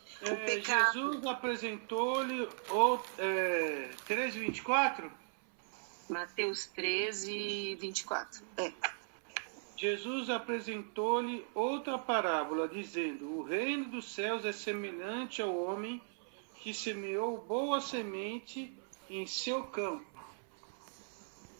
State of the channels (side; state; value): left; silent; 53 dB below the other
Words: O pecado... Jesus apresentou-lhe 13:24? Mateus 13, 24. Jesus apresentou-lhe outra parábola, dizendo: o reino dos céus é semelhante ao homem que semeou boa semente em seu campo.